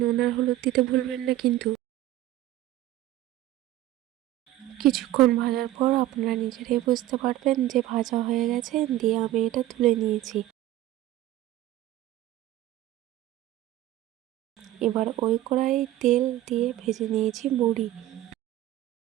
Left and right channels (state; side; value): quieter; left; 14.4 dB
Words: নুন আর হলুদ দিতে ভুলবেন না কিন্তু। কিছুক্ষণ ভাজার পর আপনারা নিজেরাই বুঝতে পারবেন যে ভাজা হয়ে গেছে, দিয়ে আমি এটা তুলে নিয়েছি। এবার ওই কড়াইয়ে তেল দিয়ে ভেজে নিয়েছি বড়ি।